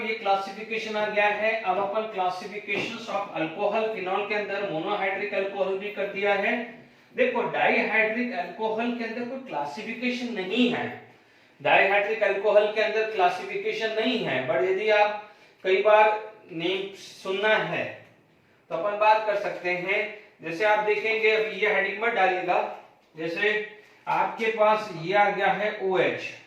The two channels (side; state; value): both; identical; correlation 1.00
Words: ये क्लासिफिकेशन आ गया है। अब अपन क्लासिफिकेशंस ऑफ अल्कोहल फिनॉल के अंदर मोनोहाइड्रिक अल्कोहल भी कर दिया है। देखो डाइहाइड्रिक अल्कोहल के अंदर कोई क्लासिफिकेशन नहीं है, डाइहाइड्रिक अल्कोहल के अंदर क्लासिफिकेशन नहीं है, बट यदि आप कई बार नेम सुनना है तो अपन बात कर सकते हैं। जैसे आप देखेंगे, अभी ये हेडिंग मत डालिएगा, जैसे आपके पास ये आ गया है OH,